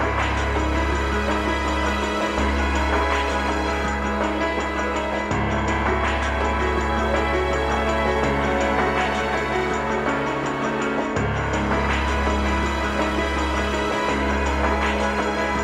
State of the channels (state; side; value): noise; right; hum, 24 dB below the sound